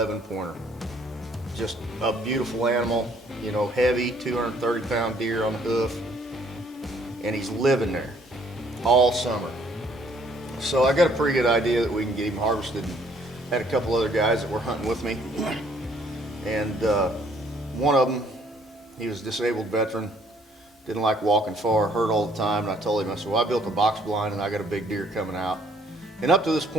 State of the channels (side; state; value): both; normal; correlation 0.63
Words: Just a beautiful animal, you know, heavy, 230-pound deer on the hoof, and he's living there all summer. So I got a pretty good idea that we can get him harvested. Had a couple other guys that were hunting with me, and one of them, he was a disabled veteran, didn't like walking far, hurt all the time, and I told him, I said, well, I built a box blind and I got a big deer coming out. And up to this